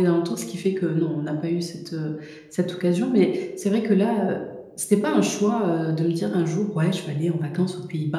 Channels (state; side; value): identical; both; correlation 1.00